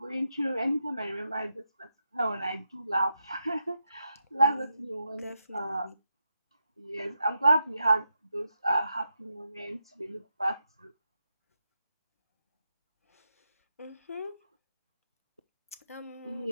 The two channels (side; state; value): both; inverted; correlation -0.85